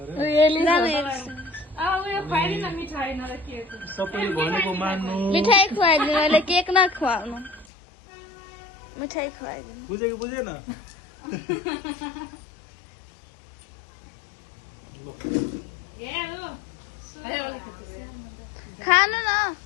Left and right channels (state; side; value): drops out; right; at 7.7 s